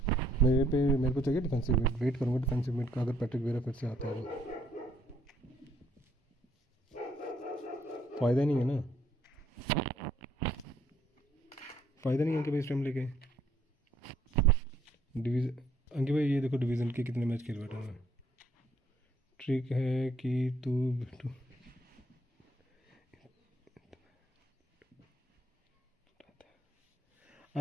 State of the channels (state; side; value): normal; both; correlation 0.67